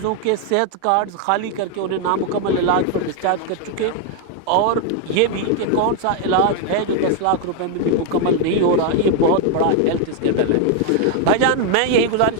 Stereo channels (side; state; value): both; different; correlation 0.01